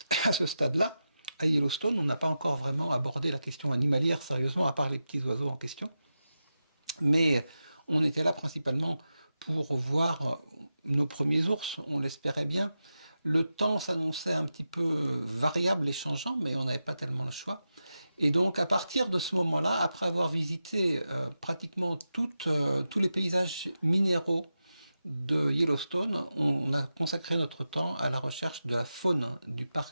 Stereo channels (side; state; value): both; inverted; correlation -0.91